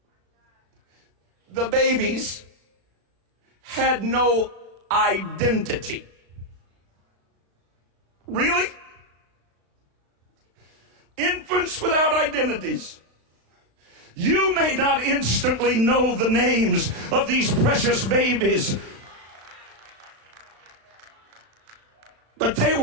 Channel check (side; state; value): left; late; 35 ms